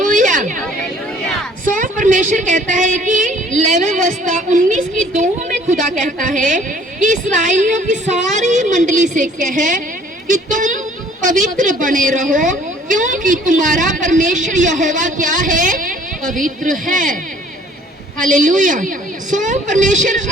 सो परमेश्वर कहता है कि लेवी व्यवस्था 19:2 में खुदा कहता है कि इस्राएलियों की सारी मंडली से कह कि तुम पवित्र बने रहो, क्योंकि तुम्हारा परमेश्वर यहोवा क्या है? पवित्र है। हालेलुया। सो परमेश्वर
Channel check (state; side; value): normal; both; correlation 0.55